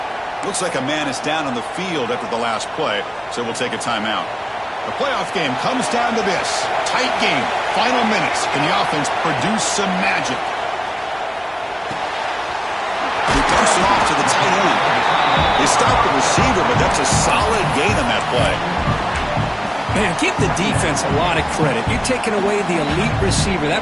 Looks like a man is down on the field after the last play, so we'll take a timeout. The playoff game comes down to this. Tight game. Final minutes. Can the offense produce some magic? He dumps it off to the tight end. They stopped the receiver, but that's a solid gain on that play. Man, give the defense a lot of credit. You're taking away the elite receiver. That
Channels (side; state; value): both; identical; correlation 1.00